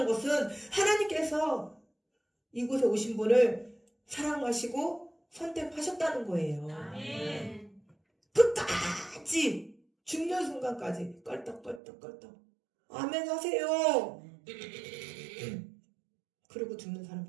것은 하나님께서 이곳에 오신 분을 사랑하시고 선택하셨다는 거예요. 아멘. 끝까지 죽는 순간까지 껄떡껄떡 아멘 하세요. 그리고 죽는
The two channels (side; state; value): left; drops out; at 11.8 s